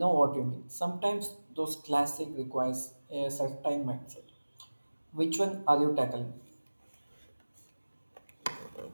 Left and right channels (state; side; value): inverted; both; correlation -1.00